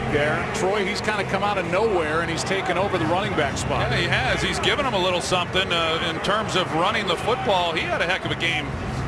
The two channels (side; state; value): both; identical; correlation 1.00